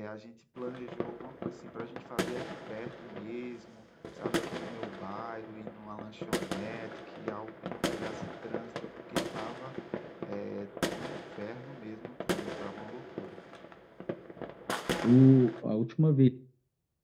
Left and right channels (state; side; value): identical; both; correlation 1.00